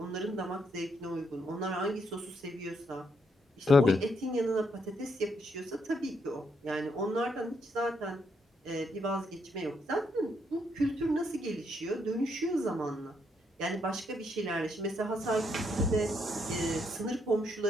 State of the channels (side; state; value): both; normal; correlation 0.76